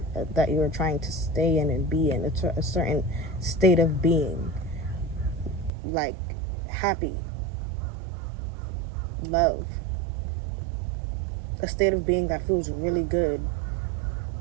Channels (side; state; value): left; drops out; at 5.7 s